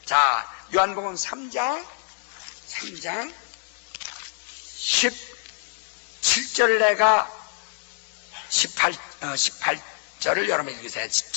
자, 요한복음 3장 17절을 내가 18절을 여러분 읽으세요.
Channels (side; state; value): right; silent; digital silence